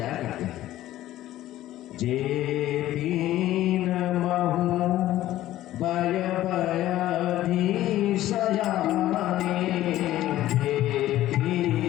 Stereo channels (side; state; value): right; quieter; 14.3 dB